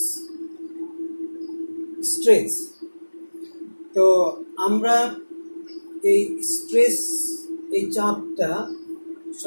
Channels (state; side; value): inverted; both; correlation -1.00